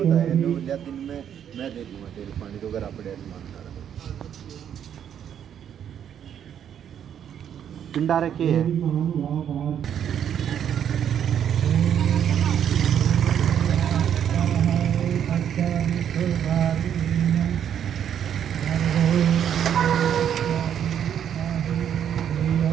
में मैं दे दूंगा तेल पानी तो अगर आप पिंडा रखे है।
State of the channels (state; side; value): quieter; left; 9.2 dB